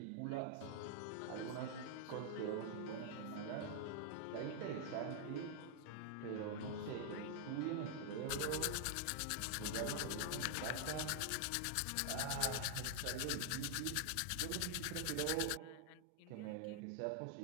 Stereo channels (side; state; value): both; different; correlation 0.00